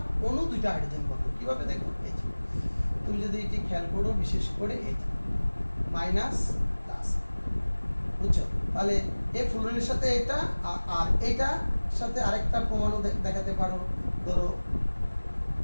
অণু 2টা হাইড্রোজেন বন্ধন, কিভাবে দেখো, এই যে তুমি যদি এটি খেয়াল করো, বিশেষ করে এই যে মাইনাস প্লাস, বুঝছো? তাহলে এই ফ্লুরিনের সাথে এটা আর এটা সাথে আরেকটা প্রমাণও দেখাতে পারো, ধরো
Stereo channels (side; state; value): both; inverted; correlation -1.00